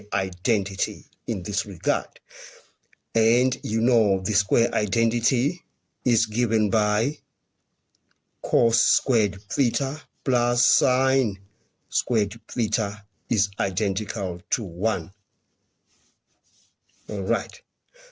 identity in this regard. And you know the square identity is given by cos squared theta plus sin squared theta is identical to 1. All right.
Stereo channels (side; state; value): both; identical; correlation 1.00